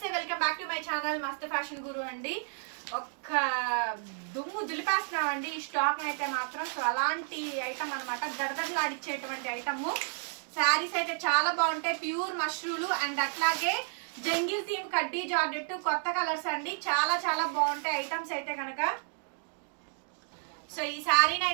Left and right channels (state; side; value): silent; left; 57 dB below the other